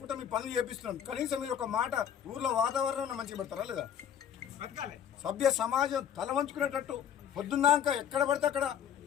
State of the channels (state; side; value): quieter; right; 9.1 dB